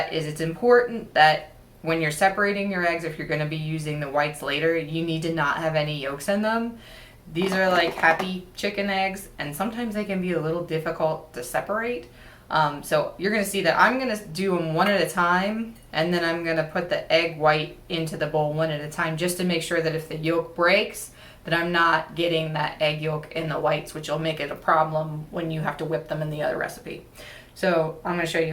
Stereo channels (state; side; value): identical; both; correlation 1.00